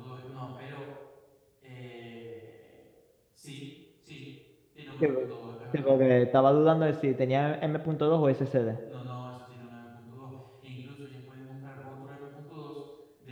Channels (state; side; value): identical; both; correlation 1.00